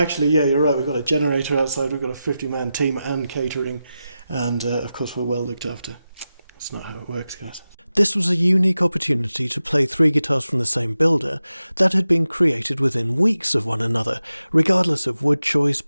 yeah, you're right. We've got a generator outside. We've got a 50-man team and catering. And, of course, we're well looked after. It's not how it works, guys. This was a unique opportunity to play 3 guitars from the same builder that had been created within weeks of one another. Regardless of wood choice,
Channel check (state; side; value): inverted; both; correlation -0.92